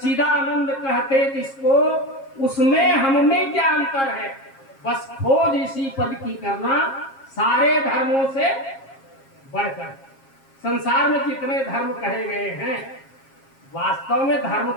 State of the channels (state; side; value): late; right; 7.4 ms